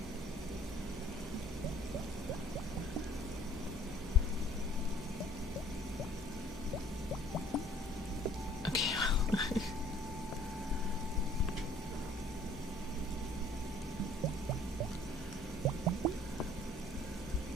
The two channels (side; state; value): both; normal; correlation 0.54